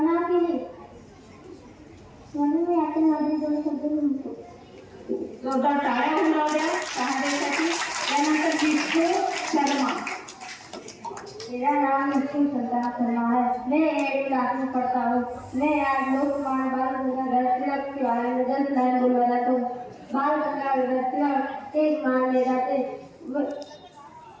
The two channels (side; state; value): both; identical; correlation 1.00